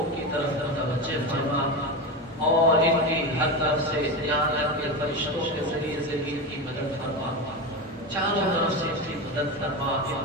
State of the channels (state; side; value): normal; both; correlation 0.20